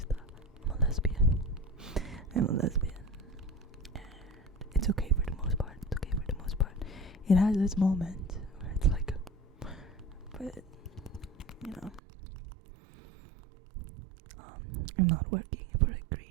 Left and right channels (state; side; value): drops out; left; at 12.0 s